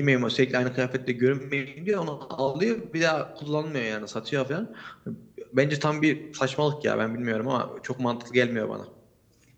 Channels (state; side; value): identical; both; correlation 1.00